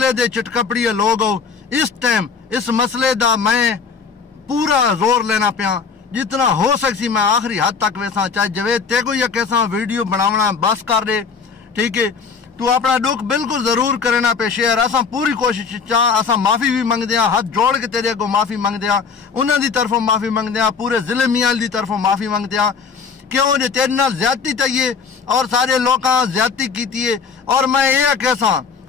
دے چٹکپڑی لوگ ہو اس ٹائم اس مسئلے دا میں پورا زور لینا پیا جتنا ہو سکسی میں آخری حد تک ویسا چاہے جوید تے کو یا کیسا ویڈیو بناونا بس کر دے ٹھیک ہے تو اپنا دکھ بالکل ضرور کرنا پہ شیئر اساں پوری کوشش چاہ اساں معافی بھی منگ دیاں ہاتھ جوڑ کے تیرے کو معافی منگ دیاں انہاں دی طرفوں معافی منگ دیاں پورے ضلع میال دی طرفوں معافی منگ دیاں کیوں جو تیرے نال زیادتی تائیے اور سارے لوکاں زیادتی کیتی ہے اور میں یہ کیسا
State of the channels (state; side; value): quieter; right; 5.6 dB